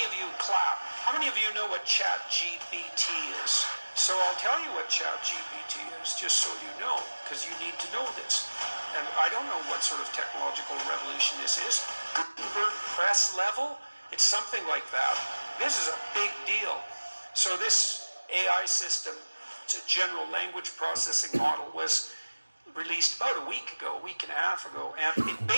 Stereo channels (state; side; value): inverted; both; correlation -1.00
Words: of you clap? How many of you know what Chat GPT is? So I'll tell you what Chat GPT is, just so you know, because you need to know this. And I don't know what sort of technological revolution this is. Gutenberg press level? It's something like that. This is a big deal. So this AI system, it's a general language processing model, was released about a week and a half ago. And it